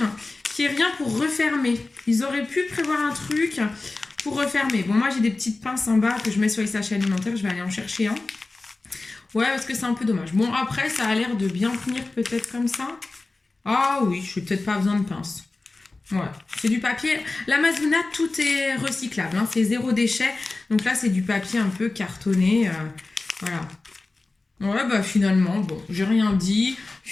qu'il n'y ait rien pour refermer. Ils auraient pu prévoir un truc pour refermer. Bon, moi, j'ai des petites pinces en bas que je mets sur les sachets alimentaires. Je vais aller en chercher un. Ouais, parce que c'est un peu dommage. Bon, après, ça a l'air de bien tenir peut-être comme ça. Ah oui, je n'ai peut-être pas besoin de pince. Ouais, c'est du papier. L'Amazona, tout est recyclable. Hein. C'est 0 déchet. Donc là, c'est du papier un peu cartonné. Voilà. Ouais, bah finalement, bon, j'ai rien dit.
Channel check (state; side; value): quieter; right; 3.3 dB